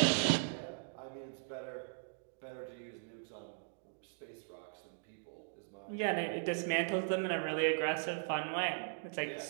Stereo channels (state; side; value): silent; left; digital silence